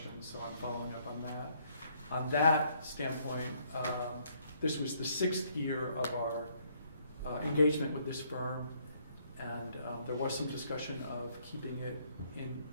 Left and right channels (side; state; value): both; inverted; correlation -0.68